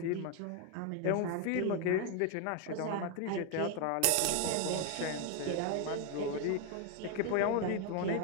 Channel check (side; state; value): both; different; correlation 0.01